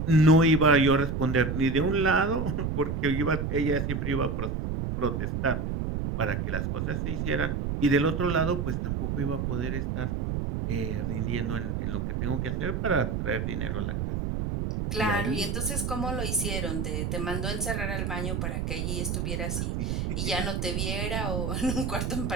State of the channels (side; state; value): right; noise; rumble, 1 dB below the sound